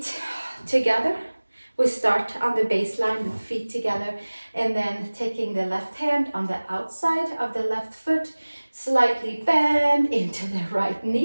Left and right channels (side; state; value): both; inverted; correlation -1.00